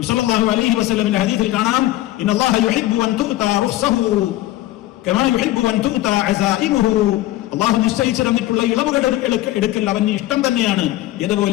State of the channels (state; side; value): quieter; right; 15.9 dB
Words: സല്ലല്ലാഹു അലൈഹി വസല്ലമിന്റെ ഹദീസിൽ കാണാം, ഇന്നല്ലാഹ യുഹിബ്ബു അൻ തുഅതാ റുഖ്സഹു കമാ യുഹിബ്ബു അൻ തുഅതാ അസായിമുഹു, അള്ളാഹു നിശ്ചയിച്ചു തന്നിട്ടുള്ള ഇളവുകൾ എടുക്കൽ അവന് ഇഷ്ടം തന്നെയാണ്.